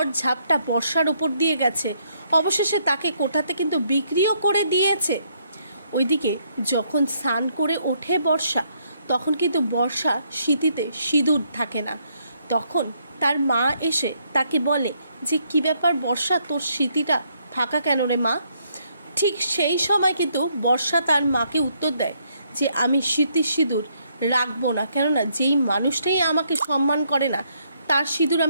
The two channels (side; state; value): both; inverted; correlation -0.72